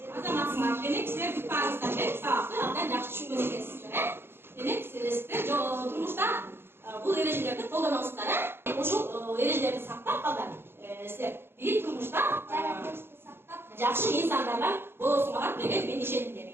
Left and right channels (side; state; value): left; late; 0.11 ms